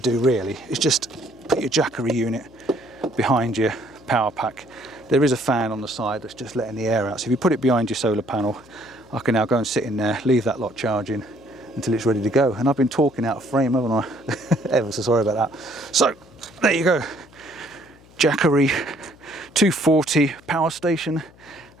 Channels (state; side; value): noise; left; hum, 26 dB below the sound